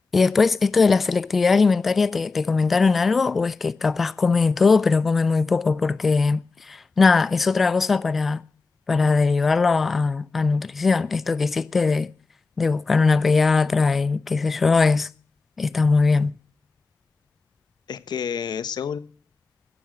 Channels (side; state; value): right; quieter; 4.0 dB